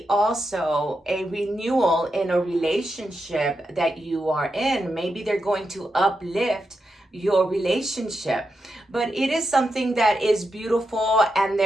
also a renewal in a relationship that you are in. Maybe they're going to uplift your relationship, but it is something that is beautiful, and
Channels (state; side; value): normal; both; correlation 0.86